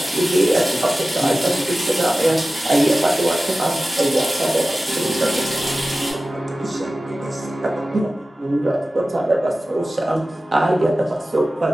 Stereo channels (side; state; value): both; normal; correlation 0.96